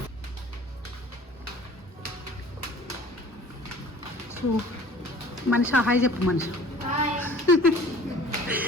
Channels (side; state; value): both; normal; correlation 0.47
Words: మనిషి హాయ్ చెప్పు మనిషి